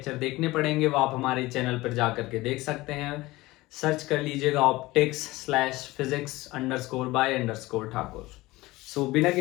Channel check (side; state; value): right; quieter; 19.7 dB